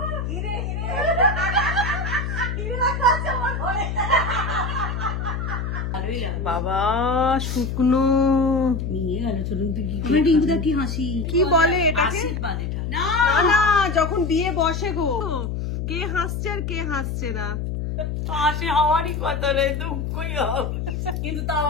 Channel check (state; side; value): noise; left; hum, 3 dB below the sound